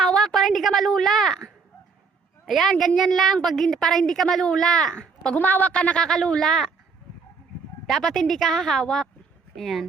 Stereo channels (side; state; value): left; quieter; 4.9 dB